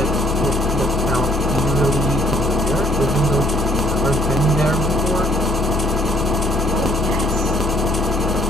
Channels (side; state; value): both; normal; correlation 0.65